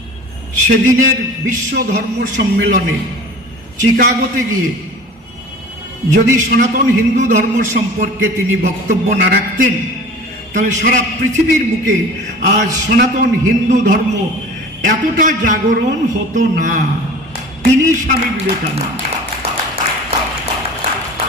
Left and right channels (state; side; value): normal; both; correlation 0.40